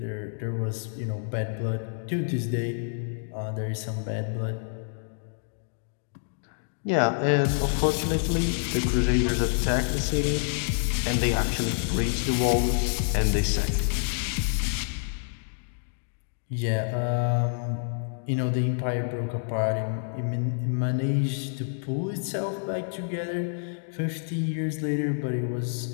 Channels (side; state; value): right; silent; digital silence